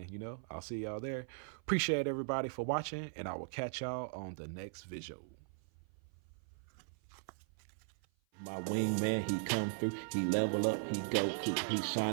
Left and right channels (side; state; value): left; silent; 52 dB below the other